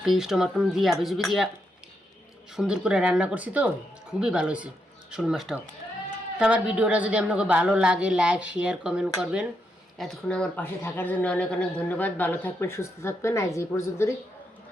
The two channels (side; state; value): both; normal; correlation 0.81